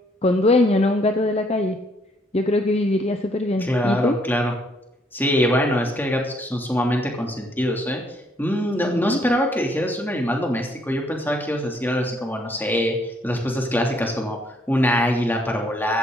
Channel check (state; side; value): normal; both; correlation 0.68